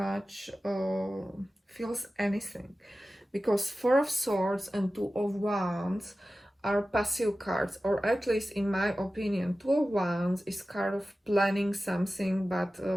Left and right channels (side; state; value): both; normal; correlation 0.95